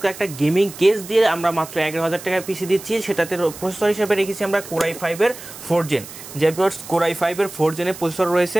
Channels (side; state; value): right; noise; hiss, 15 dB below the sound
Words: একটা গেমিং কেস দিয়ে আমরা মাত্র 11,000 টাকায় পিসি দিচ্ছি। সেটাতে প্রসেসর হিসেবে রেখেছি আমরা Core i5 এর 4 জেন। যে ভিউয়ার্স Core i5 এর 4 জেনের প্রসেসর রয়েছে।